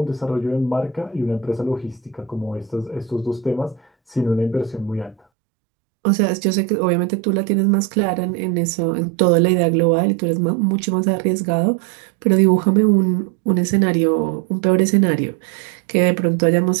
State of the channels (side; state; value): left; drops out; at 5.2 s